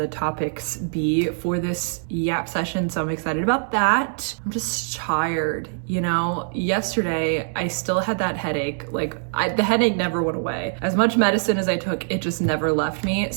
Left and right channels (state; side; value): silent; left; digital silence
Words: topics be for this Yap session, so I'm excited about that. I'm just tired, you know? Yesterday, I still had that headache. The headache never went away. As much medicine as I took, it just never left me.